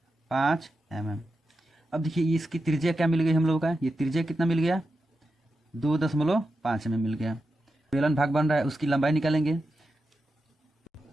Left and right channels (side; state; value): both; normal; correlation 0.89